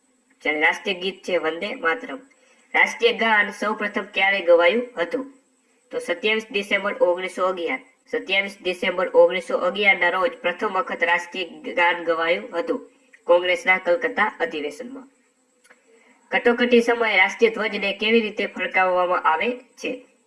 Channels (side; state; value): both; identical; correlation 1.00